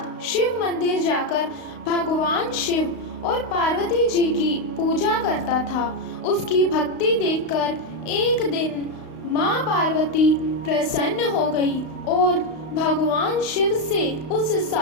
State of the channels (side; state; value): right; late; 32 ms